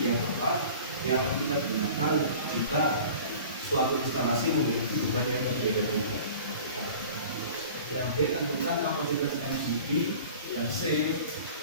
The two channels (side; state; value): both; inverted; correlation -0.43